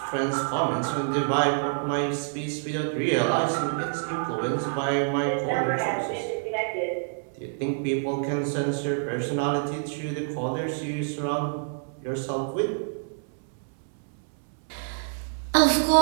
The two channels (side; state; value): left; silent; 60 dB below the other